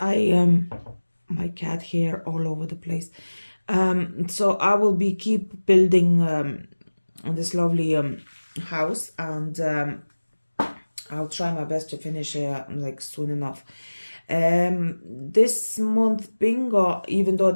my cat hair all over the place. So I will be keep building this lovely house, and I'll try my best to finish like soon enough. This month bingo, even though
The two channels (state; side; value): inverted; both; correlation -1.00